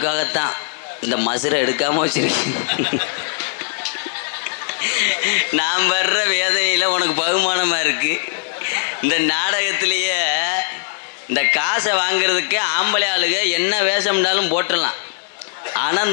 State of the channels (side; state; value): right; silent; digital silence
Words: இந்த மசுரை எடுக்காமல் வச்சிருக்கேன். நான் வர்ற வேதனையில் உனக்கு பகுமானமாக இருக்குது. இந்த நாடகத்திலேயே இந்த காசை வாங்கிறதுக்கு ஆம்பளை ஆளுங்க என்ன வேஷம்னாலும் போட்டுடலாம். ஆனால்